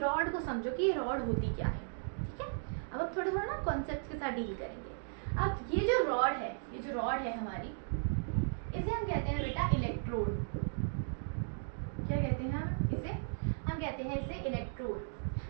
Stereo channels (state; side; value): silent; left; digital silence